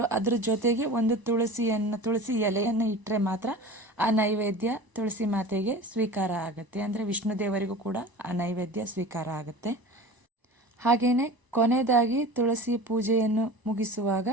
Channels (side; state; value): left; late; 1.0 ms